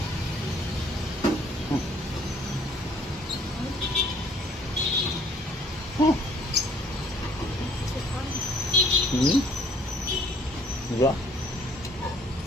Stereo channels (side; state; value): both; normal; correlation 0.60